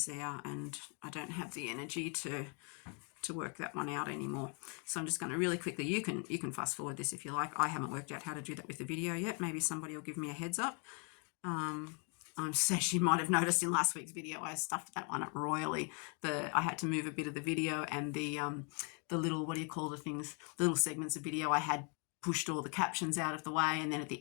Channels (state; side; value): quieter; right; 36.8 dB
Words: there and I don't have the energy to work that one out anymore. So I'm just going to really quickly, you can fast forward this if you like. I haven't worked out how to do that with the video yet. Maybe somebody will give me a heads up. As you might have noticed in last week's video, I stuffed that one up royally. I had to move a bit of the video and the little, what do you call the things, little segments of video I had pushed all the captions out of the way, and then at the